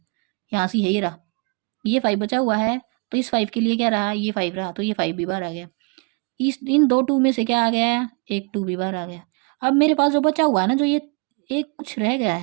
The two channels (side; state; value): left; quieter; 33.9 dB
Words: यहाँ से यही रहा, ये 5 बचा हुआ है, तो इस 5 के लिए क्या रहा, ये 5 रहा, तो ये 5 भी बाहर आ गया। इस इन 2 2 में से क्या आ गया, एक 2 भी बाहर आ गया। अब मेरे पास जो बचा हुआ है ना, जो ये एक कुछ रह गया